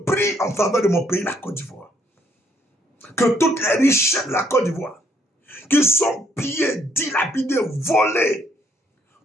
prie en faveur de mon pays, la Côte d'Ivoire, que toutes les richesses de la Côte d'Ivoire, qui sont pillées, dilapidées, volées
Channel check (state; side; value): normal; both; correlation 0.68